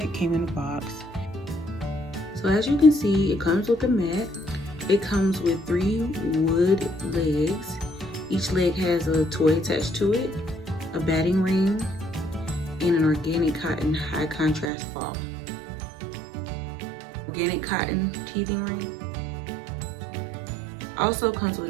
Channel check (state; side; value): drops out; left; at 14.7 s